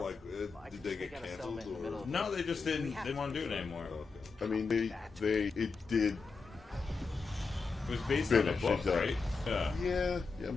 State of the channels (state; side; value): quieter; right; 4.5 dB